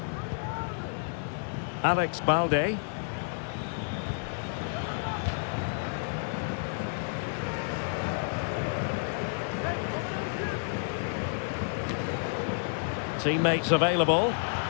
Alex Balde. Teammates available.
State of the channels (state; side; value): silent; right; digital silence